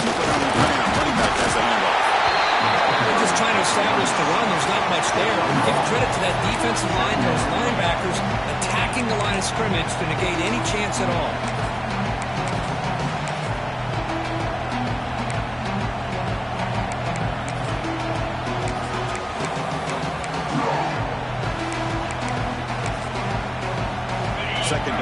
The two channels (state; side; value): identical; both; correlation 1.00